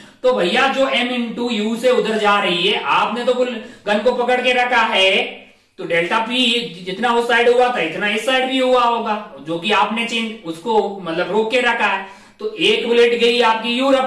तो भैया जो m इंटू यू से उधर जा रही है, आपने तो गन को पकड़ के रखा है तो डेल्टा पी जितना उस साइड हुआ था इतना इस साइड भी हुआ होगा, जो कि आपने चेंज उसको मतलब रोक के रखा है। तो एक बुलेट गई आपकी यू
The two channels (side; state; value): both; identical; correlation 1.00